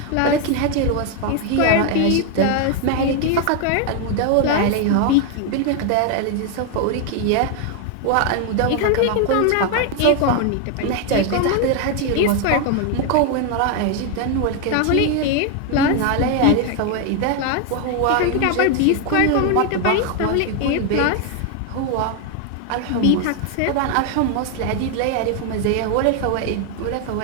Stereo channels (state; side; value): different; both; correlation 0.01